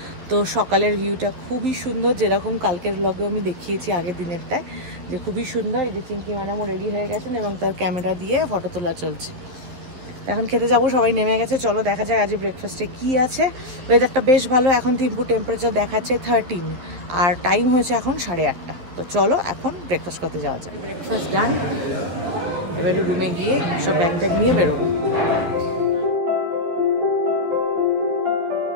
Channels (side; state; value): left; late; 11 ms